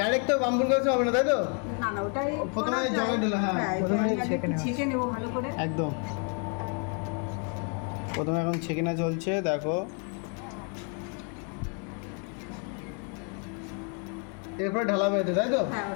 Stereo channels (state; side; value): quieter; right; 39.6 dB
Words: তো বাম্বুর গাছ হবে না, তাই তো? না না, ওটাই প্রথমে জলে ঢেলে, হ্যাঁ, প্রথমে জলে আগে ছেঁকে একটু নেওয়া। ছেঁকে নেবো ভালো করে। একদম। প্রথমে এখন ছেঁকিনা চলছে দেখো। এরপরে ঢালাবে এতে, তাই তো? হ্যাঁ,